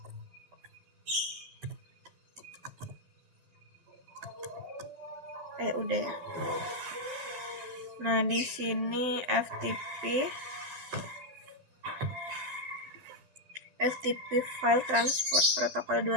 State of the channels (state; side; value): late; left; 12 ms